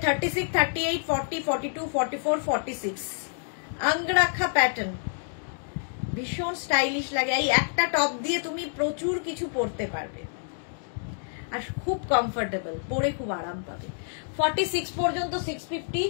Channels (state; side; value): silent; right; digital silence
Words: 36, 38, 40, 42, 44, 46 আঙ্গরাখা প্যাটার্ন, ভীষণ স্টাইলিশ লাগে। এই একটা টপ দিয়ে তুমি প্রচুর কিছু পরতে পারবে আর খুব কমফোর্টেবল, পরে খুব আরাম পাবে। 46 পর্যন্ত 650।